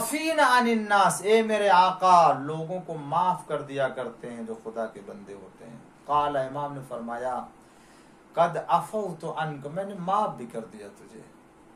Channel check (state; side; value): identical; both; correlation 1.00